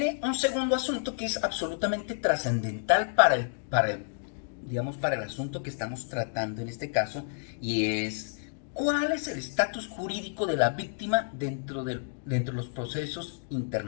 un segundo asunto que es absolutamente trascendental para el asunto que estamos tratando en este caso, y es cuál es el estatus jurídico de la víctima dentro de los procesos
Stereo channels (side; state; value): right; silent; digital silence